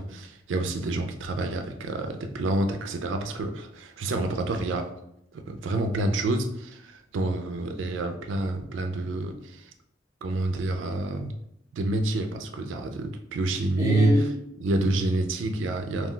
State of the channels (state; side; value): normal; both; correlation 0.69